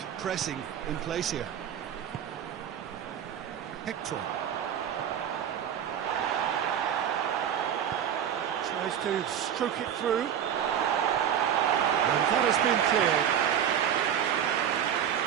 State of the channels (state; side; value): quieter; left; 9.3 dB